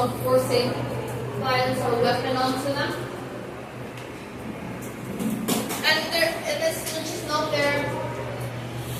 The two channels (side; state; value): both; identical; correlation 1.00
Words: forcing violence or weapon onto them. And it's just not their.